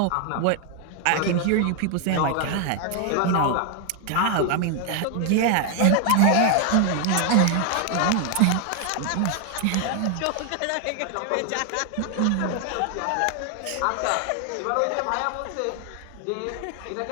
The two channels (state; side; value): different; both; correlation 0.00